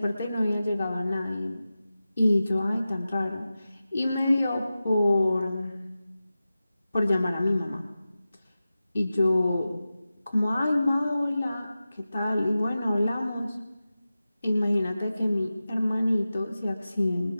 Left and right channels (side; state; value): both; inverted; correlation -0.94